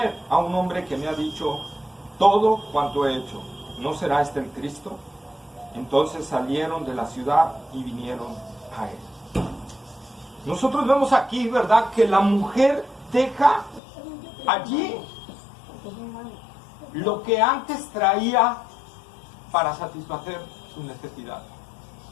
a un hombre que me ha dicho todo cuanto he hecho. ¿No será este el Cristo? Entonces salieron de la ciudad y vinieron a él. Nosotros vemos aquí, ¿verdad?, que la mujer deja allí lo que antes traía para satisfacer sus necesidades.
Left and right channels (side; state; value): right; drops out; at 13.8 s